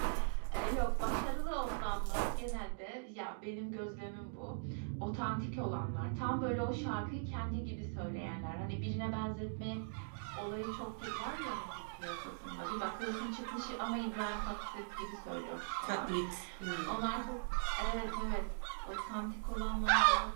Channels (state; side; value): silent; left; digital silence